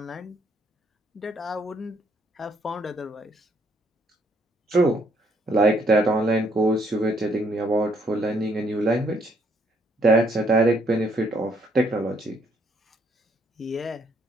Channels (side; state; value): both; normal; correlation 0.69